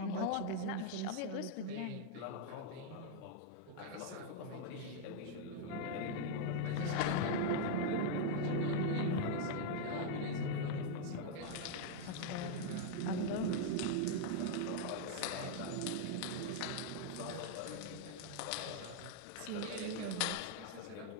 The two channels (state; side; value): different; both; correlation 0.00